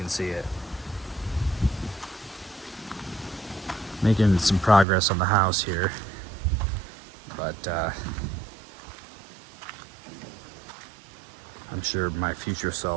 see it. Making some progress on the house here, but I'm sure my future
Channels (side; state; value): left; drops out; at 4.9 s